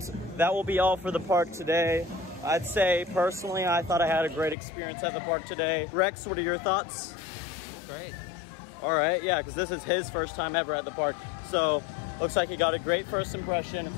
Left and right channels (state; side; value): drops out; right; at 4.5 s